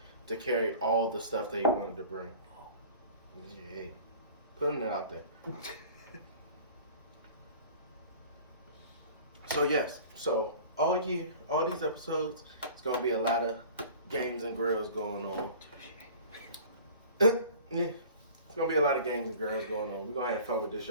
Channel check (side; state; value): both; inverted; correlation -0.43